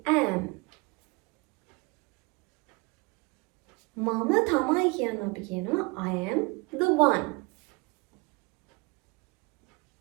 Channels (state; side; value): quieter; left; 27.4 dB